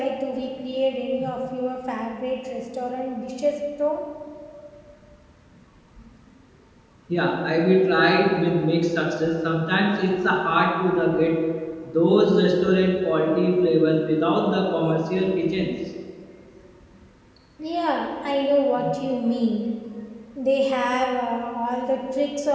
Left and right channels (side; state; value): both; identical; correlation 1.00